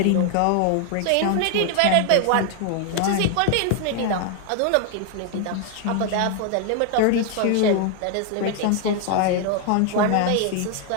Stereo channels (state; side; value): different; both; correlation 0.00